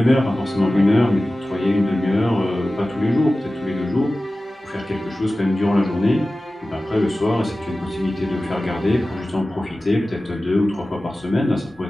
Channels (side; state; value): both; normal; correlation 0.96